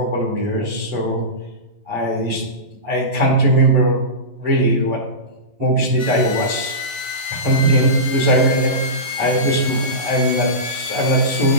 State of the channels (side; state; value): left; late; 11 ms